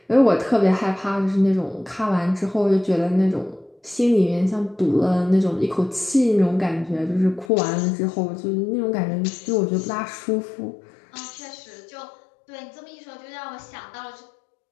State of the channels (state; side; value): drops out; right; at 7.5 s